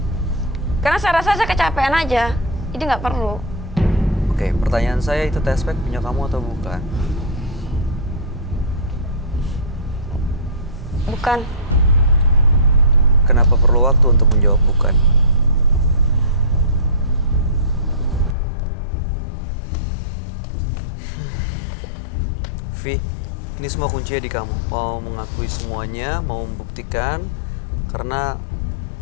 Karena saya rasa saya kecapean aja, jadi nggak perlu. Oke, pertanyaan saya, itu test pack punya kamu atau bukan? Bukan. Kenapa perlu waktu untuk menjawab bukan? Vi, ini semua kuncinya di kamu. Mau mengakui semuanya, mau membuktikan, karena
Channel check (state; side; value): drops out; right; at 18.4 s